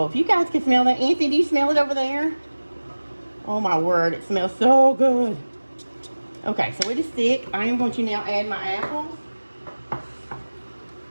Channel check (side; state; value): both; inverted; correlation -1.00